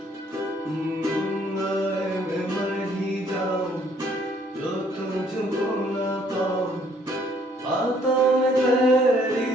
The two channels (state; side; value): normal; both; correlation 0.64